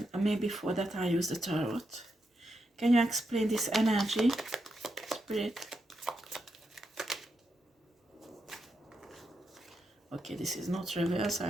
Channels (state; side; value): normal; both; correlation 0.84